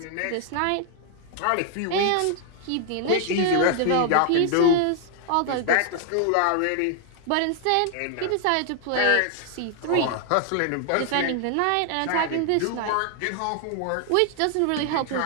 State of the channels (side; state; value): both; different; correlation 0.00